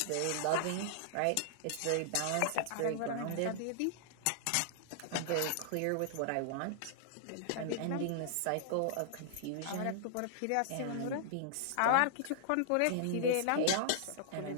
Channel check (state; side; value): different; both; correlation -0.01